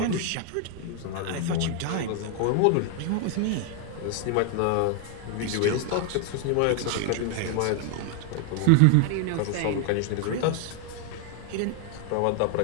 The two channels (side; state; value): both; different; correlation 0.00